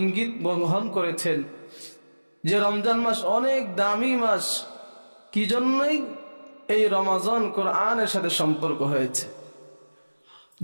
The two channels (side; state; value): both; inverted; correlation -1.00